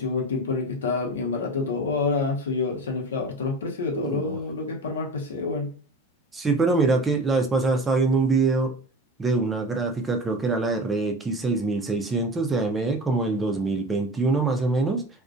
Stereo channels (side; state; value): both; normal; correlation 0.33